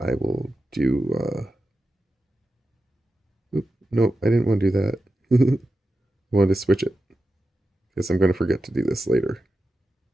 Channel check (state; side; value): normal; both; correlation 0.91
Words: will do... Nope, I didn't want to do that. I wanted to switch it. Because I'm going to forget to do this later.